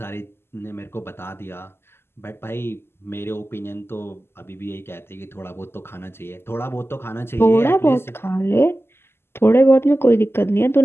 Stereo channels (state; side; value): late; right; 0.12 ms